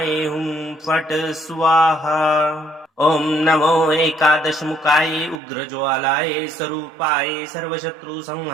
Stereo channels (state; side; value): drops out; left; at 5.4 s